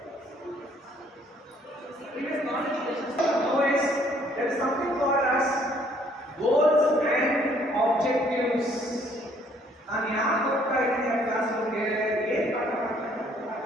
previous knowledge always there is something called as goals and objectives. ನಾನು ಯಾಕೆ ಹೋಗ್ತಾ ಇದ್ದೀನಿ ಆ ಕ್ಲಾಸ್ ಬಗ್ಗೆ ಏನು ಪಾಠ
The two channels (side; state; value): both; normal; correlation 0.63